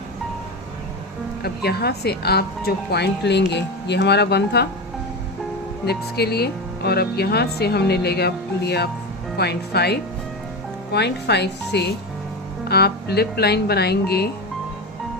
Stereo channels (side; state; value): both; normal; correlation 0.20